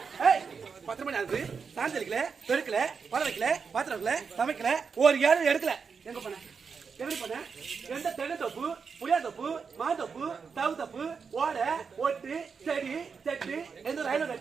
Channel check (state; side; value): quieter; left; 5.7 dB